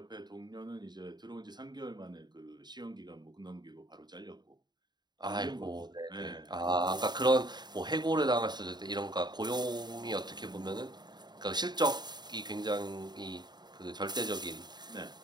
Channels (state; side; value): late; left; 0.21 ms